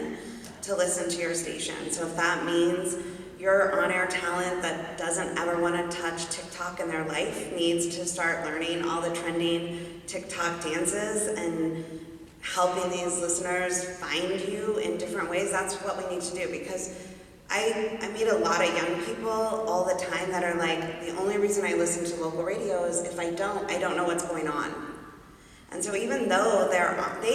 to listen to your station. So if that means your on-air talent that doesn't ever want to touch TikTok in their life needs to start learning all the trending TikTok dances and helping these listeners find you in different ways, that's what we need to do. Because I meet a lot of young people all the time that are like, the only reason I listen to local radio is if I don't know what's going on. And so even though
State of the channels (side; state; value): both; identical; correlation 1.00